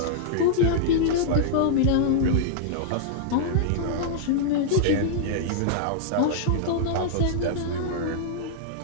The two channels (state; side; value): different; both; correlation -0.02